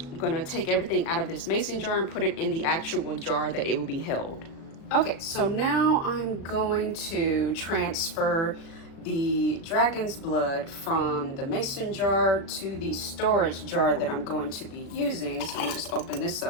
going to take everything out of this mason jar and put it in the actual jar that it will be held. Okay, so now I'm going to transfer the dragon's blood from the mason jar to the storage jar that I'm going to be using. So I'll just open this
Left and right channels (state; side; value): late; right; 36 ms